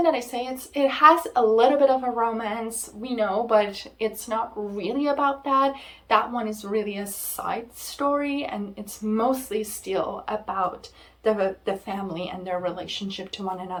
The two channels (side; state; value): both; identical; correlation 1.00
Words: that I say it has a little bit of a romance, we know, but it's not really about that. That one is really a side story, and it's mostly still about the family and their relationship to one